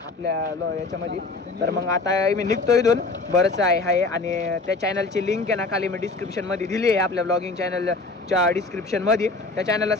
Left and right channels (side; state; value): right; quieter; 3.6 dB